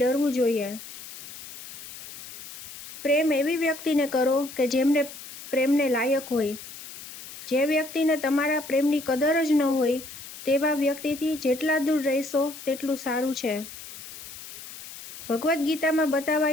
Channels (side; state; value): left; noise; hiss, 14 dB below the sound